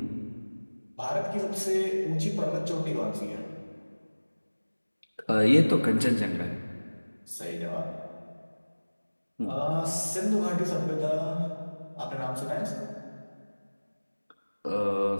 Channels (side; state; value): both; inverted; correlation -1.00